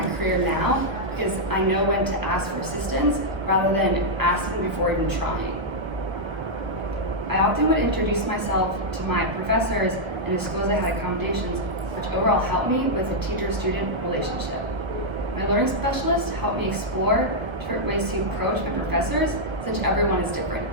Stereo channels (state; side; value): late; left; 1.2 ms